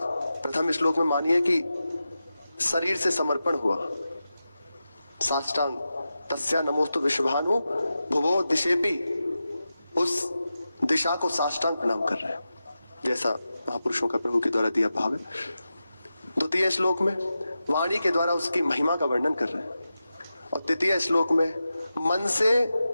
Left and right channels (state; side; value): inverted; both; correlation -0.92